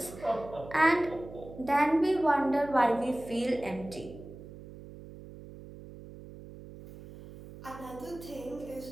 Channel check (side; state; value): right; noise; hum, 15 dB below the sound